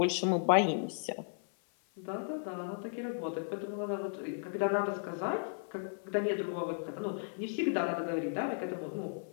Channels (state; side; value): silent; right; 54 dB below the other